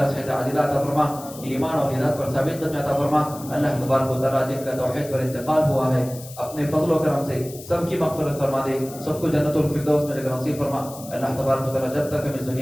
صحت عاجلہ عطا فرما، ایمان اور ہدایت پر ثابت قدمی عطا فرما۔ اللہ تبارک و تعالیٰ جن کا توحید پر انتقال ہوا ہے اپنے فضل و کرم سے سب کی مغفرت فرما دے، سب کو جنت الفردوس میں جگہ نصیب فرما۔ اللہ تبارک و تعالیٰ جب تک ہم اس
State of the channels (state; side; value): noise; left; hiss, 16 dB below the sound